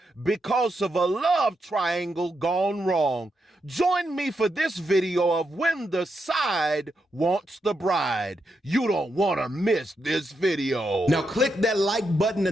because of a love triangle gone wrong. Join me for this video of when the side wants the bride. You don't want to miss this video. Now click that like button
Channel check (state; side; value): normal; both; correlation 0.83